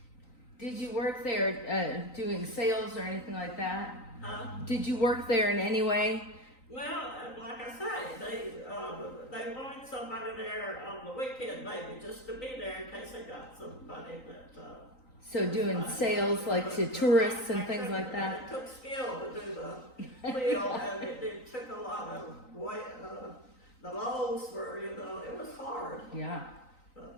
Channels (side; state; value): right; late; 3.9 ms